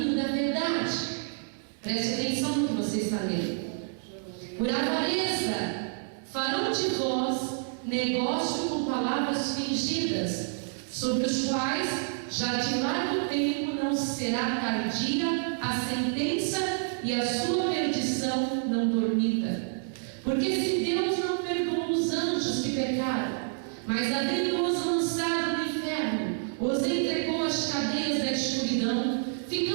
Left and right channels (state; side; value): silent; left; digital silence